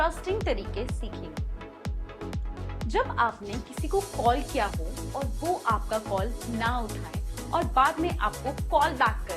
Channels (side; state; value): both; identical; correlation 1.00